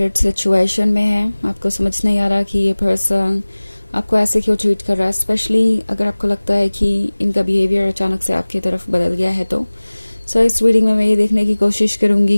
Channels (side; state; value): both; inverted; correlation -1.00